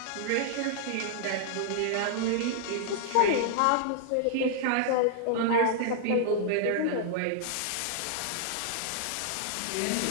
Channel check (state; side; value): different; both; correlation -0.01